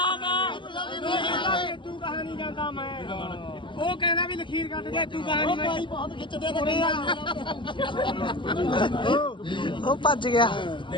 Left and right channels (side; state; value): right; late; 0.24 ms